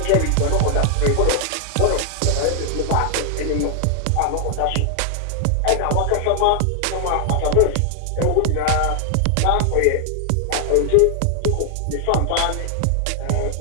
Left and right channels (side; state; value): both; different; correlation 0.00